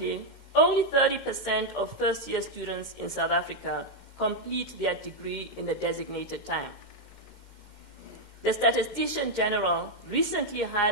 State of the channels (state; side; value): late; left; 2.1 ms